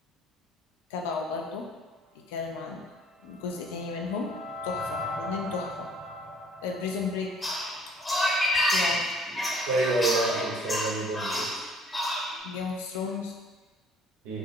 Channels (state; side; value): normal; both; correlation 0.56